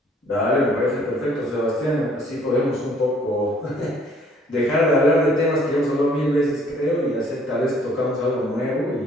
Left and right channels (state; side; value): normal; both; correlation 0.60